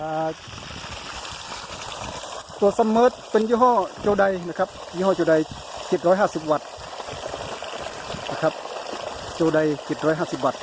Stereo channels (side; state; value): both; identical; correlation 1.00